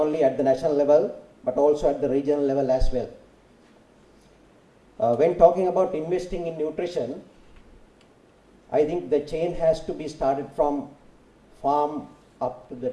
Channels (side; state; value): both; identical; correlation 1.00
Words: at the national level, but also at the regional level as well. When talking about investing in nutrition, I think the chain has to be started from farm up to the